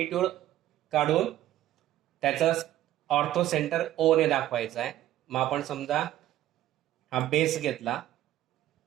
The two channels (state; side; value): quieter; left; 13.6 dB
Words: काढून त्याचा ऑर्थोसेंटर O ने दाखवायचा आहे. मग आपण समजा हा बेस घेतला.